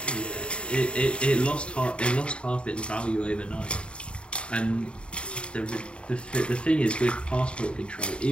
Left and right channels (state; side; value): late; right; 0.055 ms